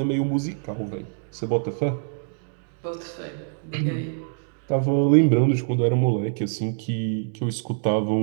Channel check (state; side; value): silent; left; digital silence